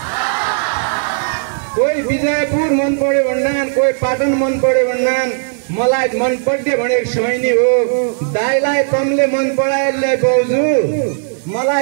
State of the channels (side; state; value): left; silent; digital silence